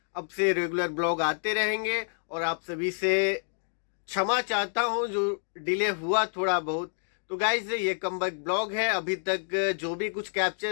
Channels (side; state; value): right; silent; digital silence